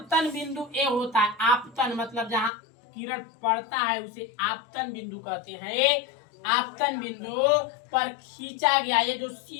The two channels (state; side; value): drops out; right; at 2.5 s